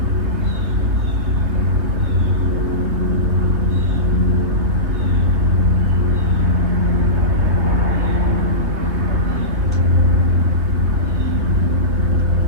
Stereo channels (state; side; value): late; left; 3.3 ms